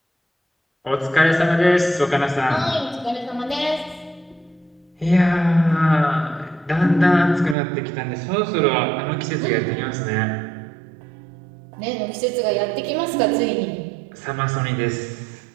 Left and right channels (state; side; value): drops out; left; at 7.6 s